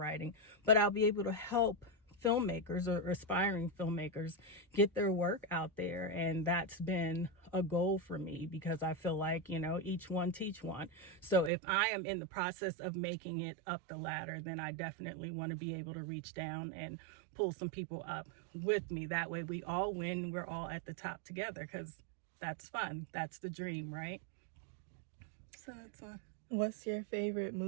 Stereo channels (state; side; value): drops out; left; at 11.5 s